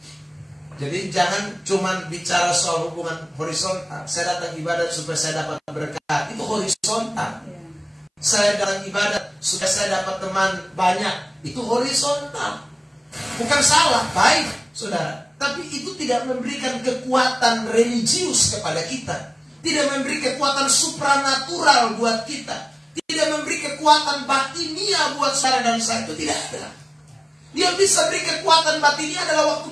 Jadi jangan cuma bicara soal hubungan horizontal. Saya datang ibadat supaya saya dapat berkat, itu horizontal. Saya datang ibadat supaya saya dapat teman banyak, itu horizontal. Bukan salah, baik saudara. Tapi itu tidak memberikan kekuatan religius kepada kita, tidak memberi kekuatan supranatural buat kita, tidak memberi kekuatan batinia buat saudara dan saya, itu tidak ada. Yang bisa beri kekuatan batinia adalah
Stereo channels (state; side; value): identical; both; correlation 1.00